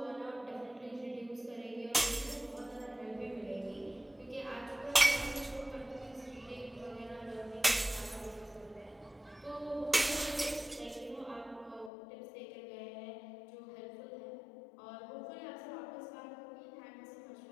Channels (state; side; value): drops out; right; at 11.9 s